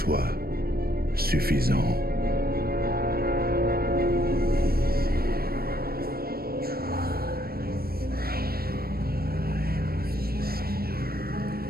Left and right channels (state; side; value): late; left; 0.44 ms